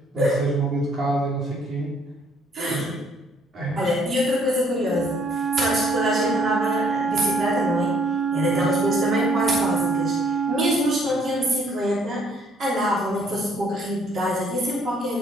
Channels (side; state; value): both; normal; correlation 0.64